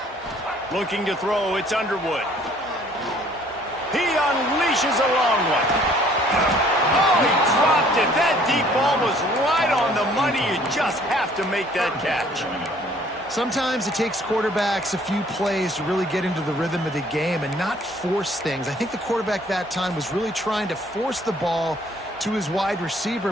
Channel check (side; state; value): both; normal; correlation 0.58